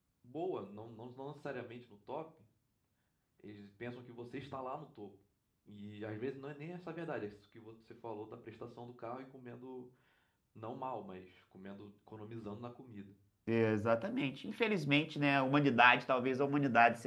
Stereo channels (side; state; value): both; identical; correlation 1.00